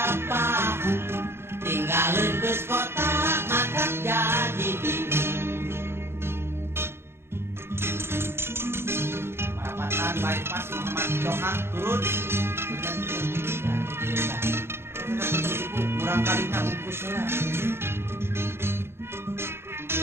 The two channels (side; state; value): left; late; 0.12 ms